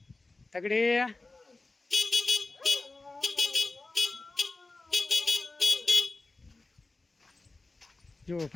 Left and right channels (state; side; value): quieter; right; 3.3 dB